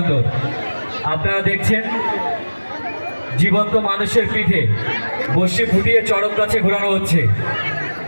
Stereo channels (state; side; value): inverted; both; correlation -1.00